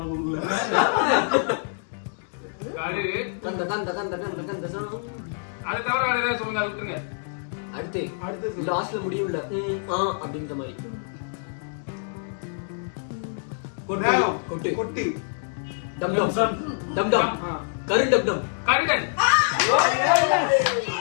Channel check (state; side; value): silent; right; digital silence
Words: கூகுள்ல கரு கந்த கந்த கந்த கந்த கந்த சாமி. அதை தவிர வேற ஏதாவது சொல்லுங்க, அதை விட்டுருங்க. அடுத்து லாஸ்ட்ல முடியும்ல அப்படின்ற மாதிரி. நேரம். கொட்டு. கொட்டு. டம் டம் டம் டம். கரு டம் டம். கருடன்